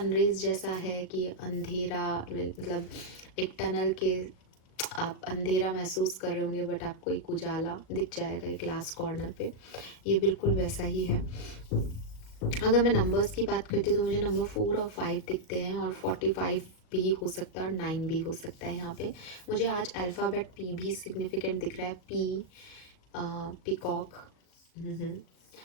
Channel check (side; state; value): right; late; 38 ms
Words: जैसा है कि अंधेरा, मतलब एक टनल के आप अंधेरा महसूस कर रहे होंगे बट आपको एक उजाला दिख जाएगा एक लास्ट कॉर्नर पे, ये बिल्कुल वैसा ही है। अगर मैं नंबर्स की बात करती हूँ तो मुझे नंबर 4 और 5 दिखते हैं, और 45 भी हो सकता है और 9 भी हो सकता है। यहाँ पे मुझे आज अल्फ़ाबेट पी भी सिग्निफिकेंट दिख रहा है। पी, पीकॉक,